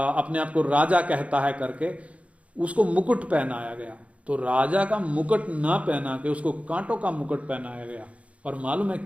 आप को राजा कहता है करके उसको मुकुट पहनाया गया। तो राजा का मुकुट ना पहना के उसको कांटों का मुकुट पहनाया गया। और मालूम है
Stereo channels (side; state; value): left; late; 0.064 ms